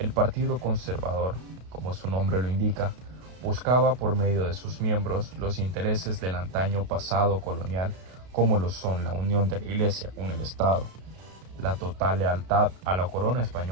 Partido Conservador, como su nombre lo indica, buscaba por medio de sus miembros los intereses del antaño pasado colonial, como lo son la unión de la Iglesia con el Estado, la total lealtad a la corona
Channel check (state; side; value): late; left; 32 ms